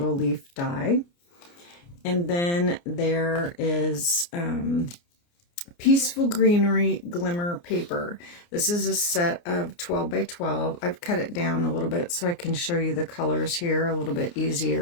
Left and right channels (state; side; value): late; right; 29 ms